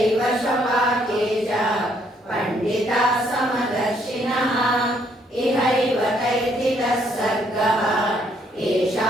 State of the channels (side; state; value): both; normal; correlation 0.69